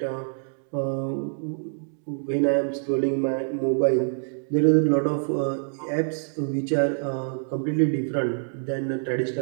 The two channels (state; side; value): silent; left; digital silence